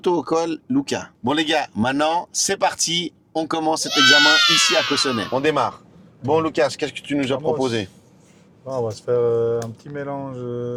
Lucas. Bon les gars, maintenant, c'est parti. On commence cet examen ici à Cossonay. On démarre. Bon Lucas, qu'est-ce que tu nous as proposé? On va se faire un petit mélange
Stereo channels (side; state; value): both; identical; correlation 1.00